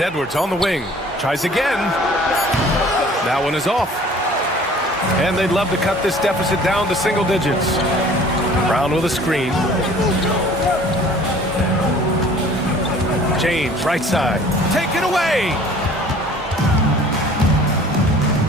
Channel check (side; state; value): both; normal; correlation 0.50